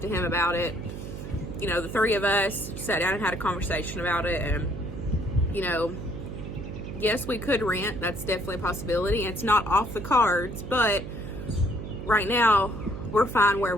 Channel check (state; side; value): noise; right; hum, 9 dB below the sound